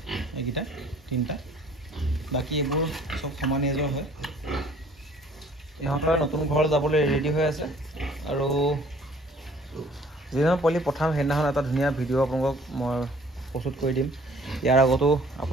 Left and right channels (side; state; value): both; normal; correlation 0.55